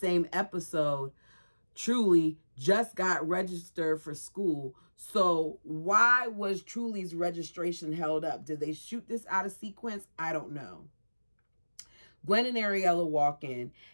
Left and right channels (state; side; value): inverted; both; correlation -1.00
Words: episode, Truly just got registered for school. So why was Truly's registration held up? Did they shoot this out of sequence? I don't know. Gwen and Ariella walk in